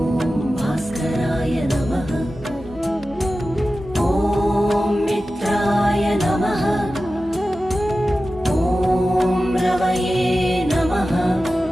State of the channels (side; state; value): both; normal; correlation 0.94